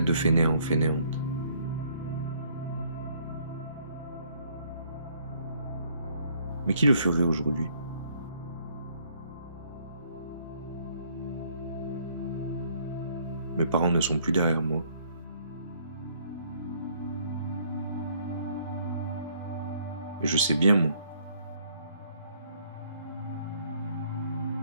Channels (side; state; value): both; inverted; correlation -0.63